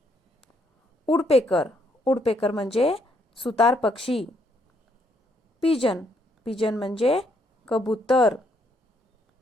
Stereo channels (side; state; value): both; normal; correlation 0.72